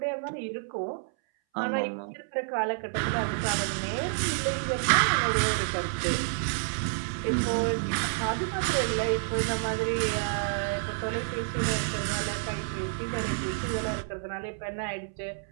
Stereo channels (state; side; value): silent; left; 58 dB below the other